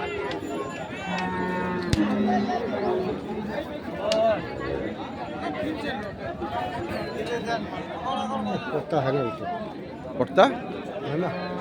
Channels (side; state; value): both; identical; correlation 1.00